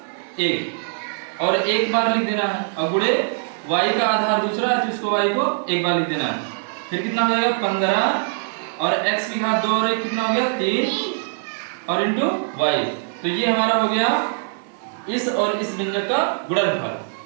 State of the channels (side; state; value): left; silent; 58 dB below the other